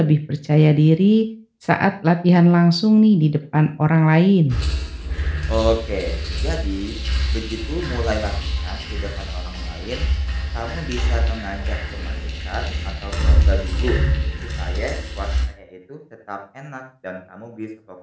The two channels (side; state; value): both; identical; correlation 1.00